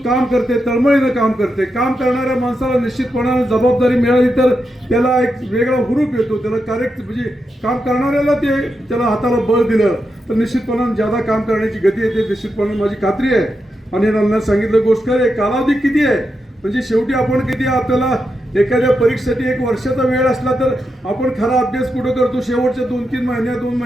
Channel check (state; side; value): normal; both; correlation 0.86